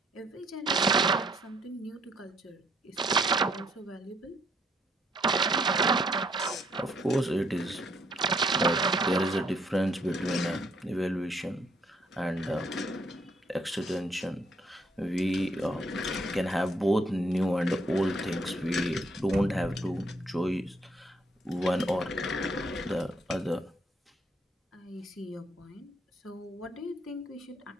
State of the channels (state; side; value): normal; both; correlation 0.68